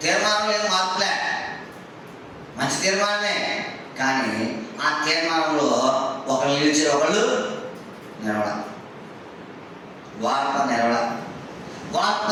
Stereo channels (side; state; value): both; identical; correlation 1.00